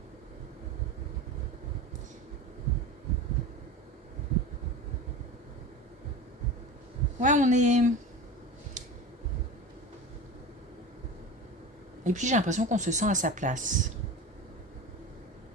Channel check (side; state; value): both; normal; correlation 0.30